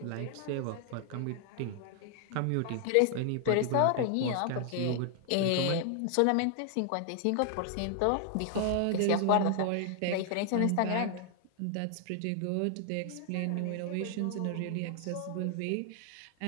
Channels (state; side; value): different; both; correlation 0.00